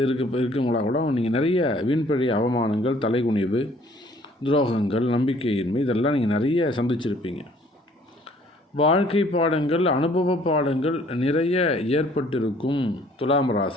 இருக்குங்களா கூட நீங்கள் நிறைய வீண்பழி அவமானங்கள், தலைகுனிவு, துரோகங்கள், நம்பிக்கையின்மை இதெல்லாம் நீங்கள் நிறைய சந்திச்சிருப்பீங்க. வாழ்க்கை பாடங்கள், அனுபவ பாடங்கள் நிறைய ஏற்பட்டிருக்கும் துலாம்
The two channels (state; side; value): normal; both; correlation 0.58